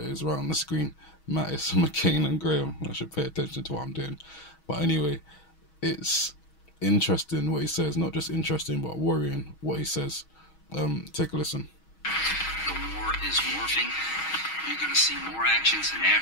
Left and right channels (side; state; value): right; late; 6.3 ms